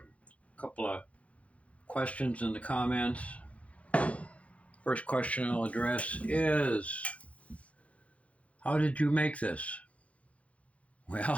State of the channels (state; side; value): late; right; 0.064 ms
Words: couple of questions in the comments. First question I'll address is, how did you make this?